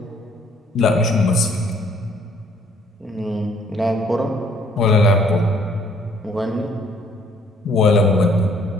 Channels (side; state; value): both; normal; correlation 0.61